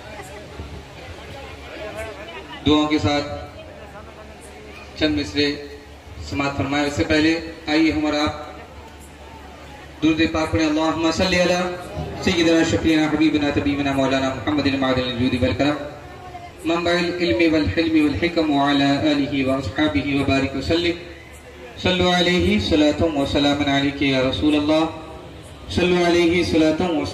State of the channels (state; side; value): identical; both; correlation 1.00